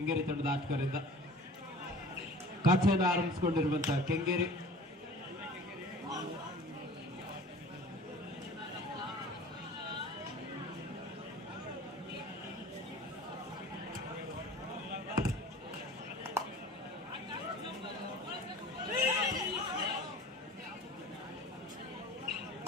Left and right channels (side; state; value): both; normal; correlation 0.43